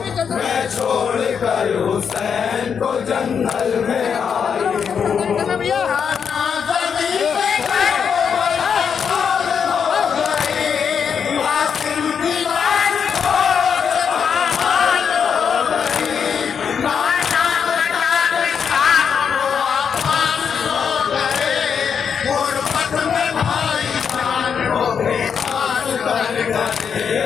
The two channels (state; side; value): quieter; right; 6.9 dB